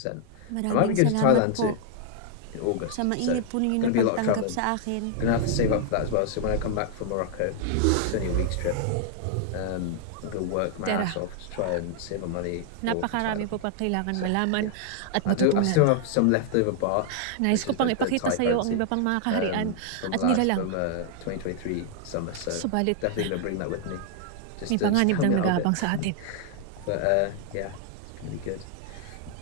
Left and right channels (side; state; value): both; different; correlation 0.00